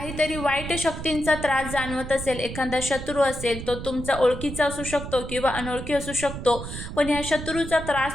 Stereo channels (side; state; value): right; noise; rumble, 8 dB below the sound